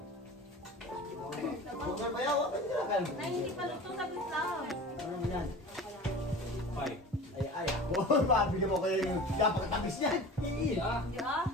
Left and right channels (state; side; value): normal; both; correlation 0.37